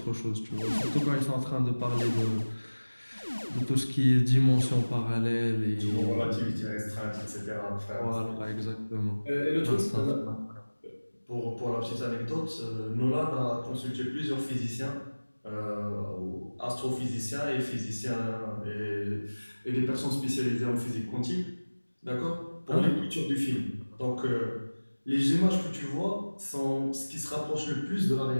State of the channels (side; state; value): both; inverted; correlation -1.00